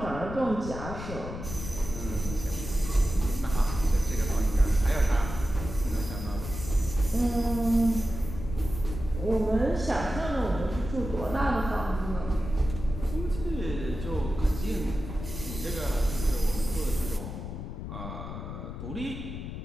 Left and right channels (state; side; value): noise; left; rumble, 8 dB below the sound